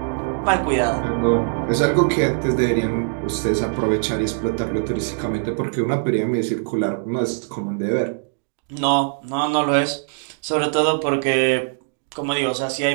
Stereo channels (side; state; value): left; silent; 64 dB below the other